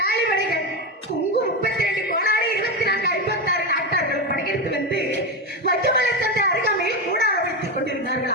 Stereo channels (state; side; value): normal; both; correlation 0.13